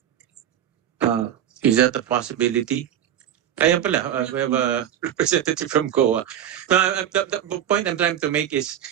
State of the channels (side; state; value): left; quieter; 10.3 dB